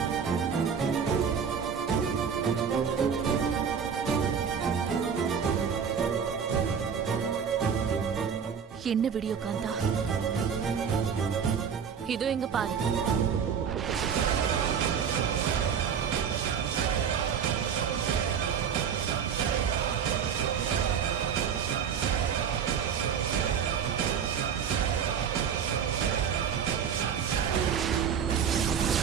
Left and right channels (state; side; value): quieter; left; 7.2 dB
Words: என்ன வீடியோ காந்தா? இதோ இங்க பாரு.